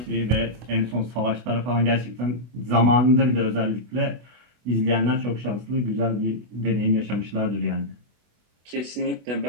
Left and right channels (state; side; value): late; left; 24 ms